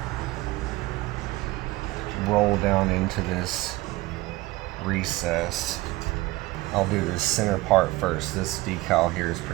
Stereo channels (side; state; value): left; quieter; 19.7 dB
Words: roll down into this recess. I'll do this center part first. This decal here is